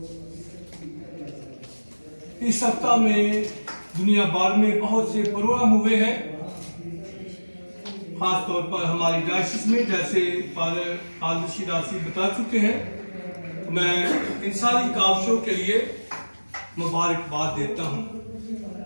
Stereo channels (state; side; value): inverted; both; correlation -1.00